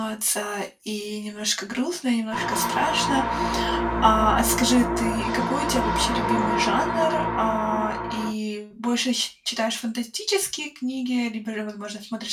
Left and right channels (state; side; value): identical; both; correlation 1.00